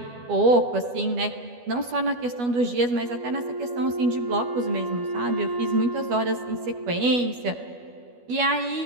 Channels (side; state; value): left; late; 12 ms